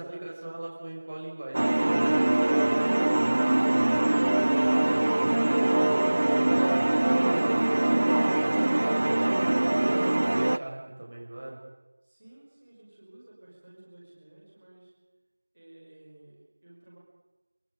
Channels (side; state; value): both; inverted; correlation -1.00